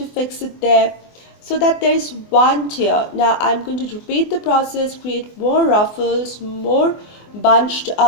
fix it there so that there is one tier. Now I'm going to repeat the process, create more ruffles, more bunched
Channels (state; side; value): late; right; 24 ms